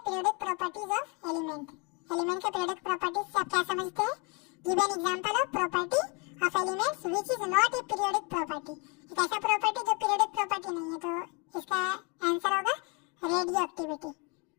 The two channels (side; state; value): right; quieter; 32.3 dB